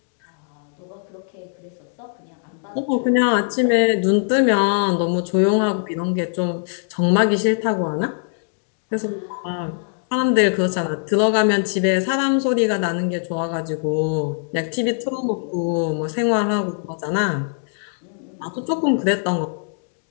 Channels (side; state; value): right; silent; digital silence